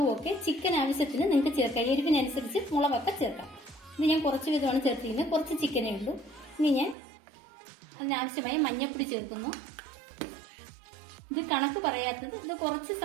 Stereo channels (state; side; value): drops out; left; at 7.0 s